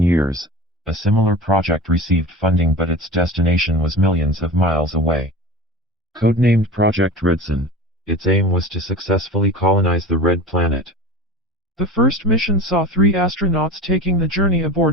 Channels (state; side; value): normal; both; correlation 0.33